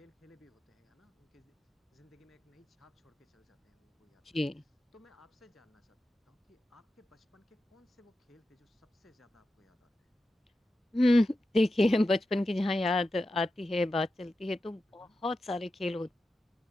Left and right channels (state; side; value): normal; both; correlation 0.91